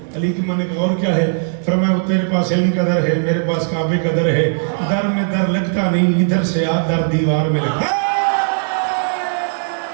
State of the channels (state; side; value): silent; left; 63 dB below the other